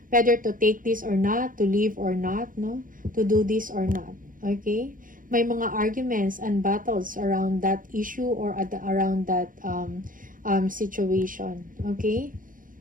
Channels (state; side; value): late; left; 0.40 ms